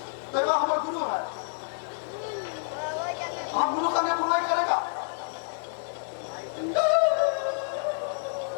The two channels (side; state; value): right; silent; digital silence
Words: दैवा हमारा गुरु है, हम गुरु का नहीं बुराई करेगा।